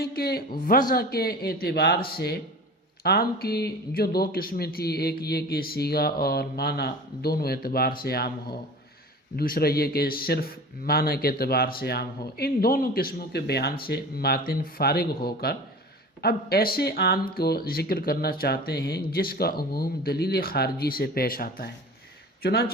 کہ وضع کے اعتبار سے عام کی جو دو قسمیں تھی، ایک یہ کہ صیغہ اور معنی دونوں اعتبار سے عام ہو، دوسرا یہ کہ صرف معنی کے اعتبار سے عام ہو، ان دونوں قسموں کے بیان سے ماتن فارغ ہو کر اب ایسے عام کو ذکر کرنا چاہتے ہیں جس کا عموم دلیل خارجی سے پیش آتا ہے۔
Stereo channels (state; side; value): normal; both; correlation 0.38